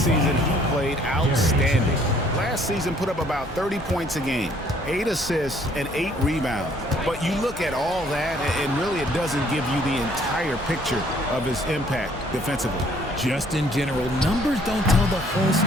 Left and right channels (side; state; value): both; normal; correlation 0.61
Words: season, he played outstanding. Last season put up about 30 points a game, 8 assists, and 8 rebounds. But you look at all that, and really it doesn't give you the entire picture of his impact defensively. Just in general, numbers don't tell the whole